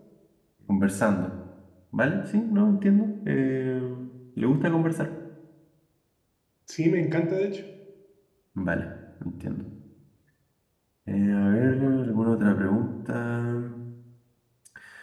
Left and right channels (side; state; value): both; identical; correlation 1.00